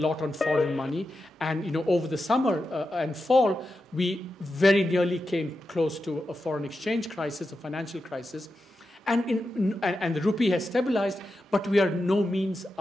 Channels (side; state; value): both; normal; correlation 0.89